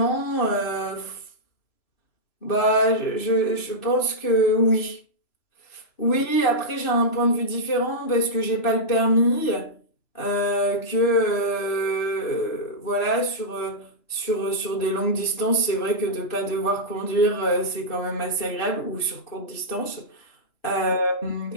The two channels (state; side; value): late; right; 2.6 ms